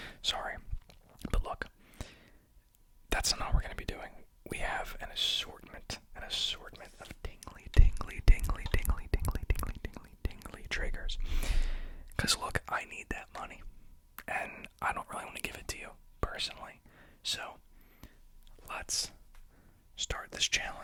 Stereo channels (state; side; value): identical; both; correlation 1.00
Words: Sorry. But look, that's not what we're going to be doing. We have an assortment of tingly triggers. Because look, I need that money. And I don't really want to give it to you, personally. So, let's start this